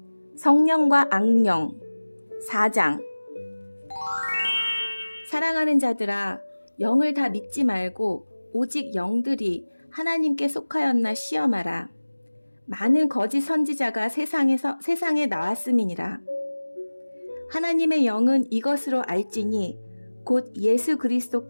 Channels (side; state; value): both; inverted; correlation -1.00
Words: 성령과 악령 4장. 사랑하는 자들아, 영을 다 믿지 말고 오직 영들이 하나님께 속하였나 시험하라. 많은 거짓 선지자가 세상에 나왔음이니라. 하나님의 영은 이것으로 알지니 곧 예수